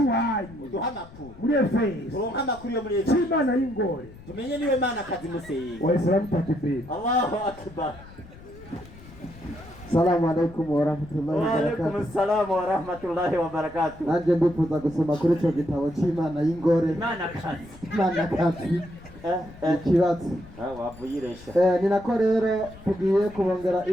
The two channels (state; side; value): noise; left; rumble, 19 dB below the sound